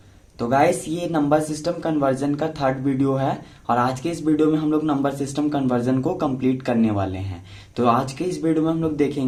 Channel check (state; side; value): identical; both; correlation 1.00